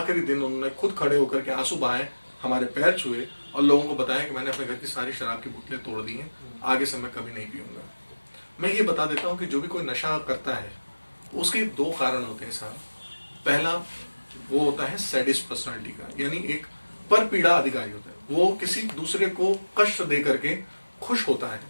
दिन उन्होंने खुद खड़े होकर के आंसू बहाए, हमारे पैर छुए और लोगों को बताया कि मैंने अपने घर की सारी शराब की बोतलें तोड़ दी हैं, आगे से मैं कभी नहीं पीऊंगा। मैं ये बता देता हूँ कि जो भी कोई नशा करता है उसके दो कारण होते हैं साहब। पहला वो होता है सैडिस्ट पर्सनालिटी का, यानी एक पर पीड़ा अधिकारी होता है, वो किसी दूसरे को कष्ट दे करके खुश होता है।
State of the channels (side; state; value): both; inverted; correlation -1.00